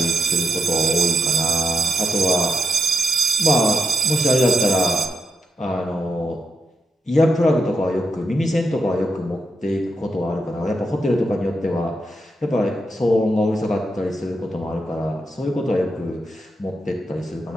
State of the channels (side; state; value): both; normal; correlation 0.85